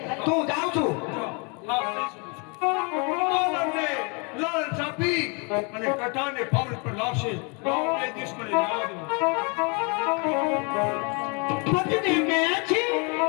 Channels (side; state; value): right; quieter; 33.4 dB